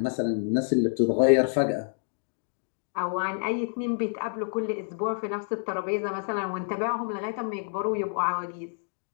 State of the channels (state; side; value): silent; right; digital silence